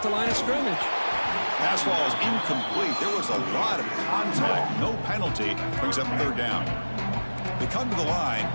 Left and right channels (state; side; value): inverted; both; correlation -1.00